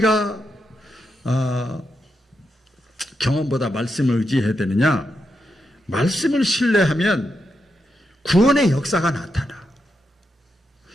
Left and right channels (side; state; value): both; normal; correlation 0.84